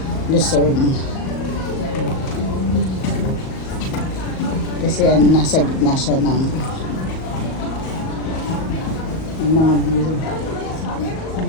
Luzon. Kasi nasa gitna siya ng mga view.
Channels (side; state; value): right; late; 38 ms